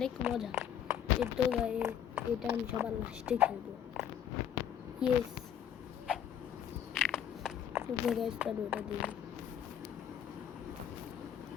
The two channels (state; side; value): quieter; right; 9.4 dB